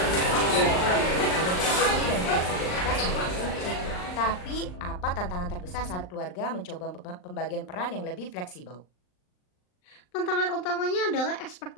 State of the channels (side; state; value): right; late; 39 ms